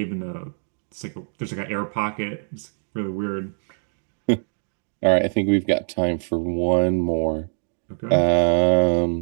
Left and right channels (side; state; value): left; silent; digital silence